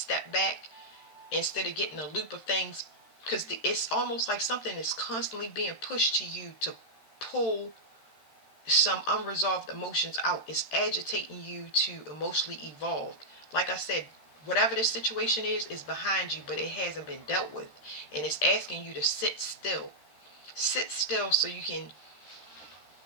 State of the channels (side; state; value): right; late; 13 ms